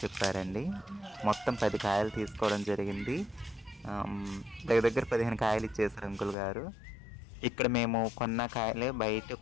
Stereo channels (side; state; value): right; drops out; at 6.4 s